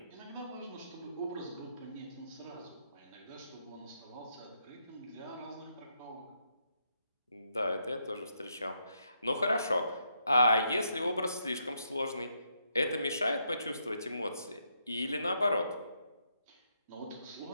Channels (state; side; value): inverted; both; correlation -0.77